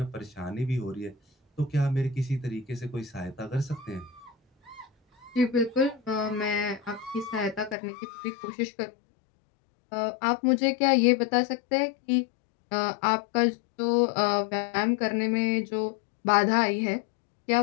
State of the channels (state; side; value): drops out; right; at 7.8 s